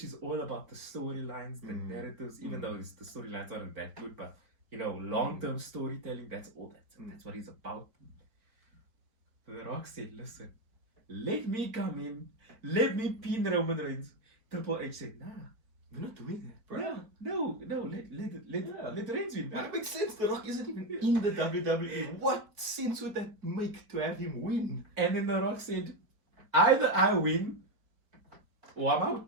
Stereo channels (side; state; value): left; late; 4.5 ms